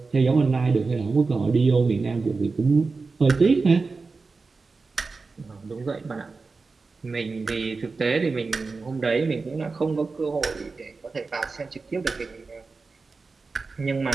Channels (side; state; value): left; quieter; 4.2 dB